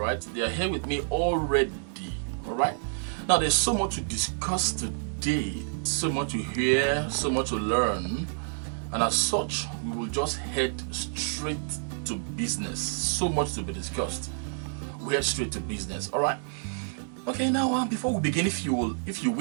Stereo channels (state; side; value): silent; left; digital silence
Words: they are here with me already. Alright, now there's so much to discuss today, so much to hear, so much to learn, and as such we will just head straight to business. So much to be discussed. We head straight to business. Alright, okay, now before we begin, if you